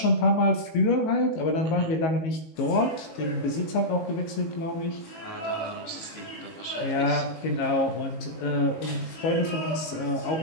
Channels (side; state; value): right; late; 19 ms